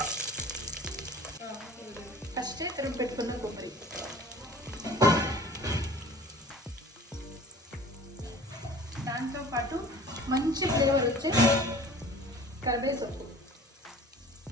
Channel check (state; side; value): normal; both; correlation 0.45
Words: ఫస్ట్ తురుము పెట్టుకున్న కొబ్బరి, దాంతో పాటు మంచి ఫ్లేవర్ వచ్చే కరివేపాకు,